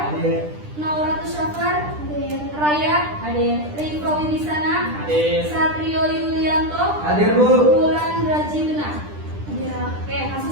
Hadir. Nauratu Syafar, Hadir. Raya, Riko Wibisana, Hadir. Satrio Yulianto, Hadir, Bu. Wulan Rajiduna. Hadir. Oke,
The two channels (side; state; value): left; late; 10 ms